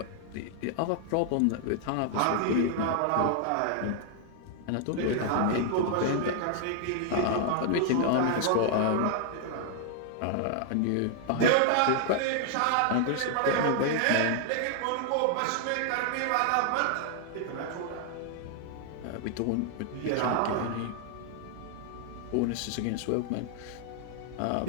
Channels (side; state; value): both; different; correlation 0.00